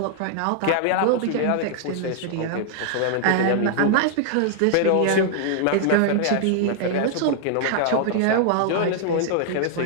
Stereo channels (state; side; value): different; both; correlation -0.01